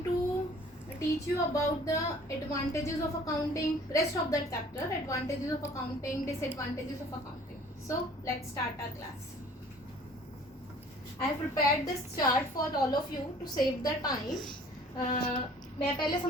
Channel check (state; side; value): normal; both; correlation 0.52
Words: to teach you about the advantages of accounting, rest of the chapter, advantages of accounting, disadvantages of accounting. So let's start our class. I have prepared this chart for all of you to save the time. मैं पहले